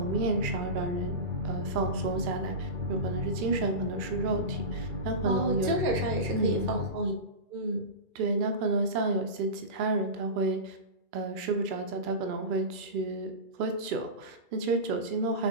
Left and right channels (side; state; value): left; late; 2.3 ms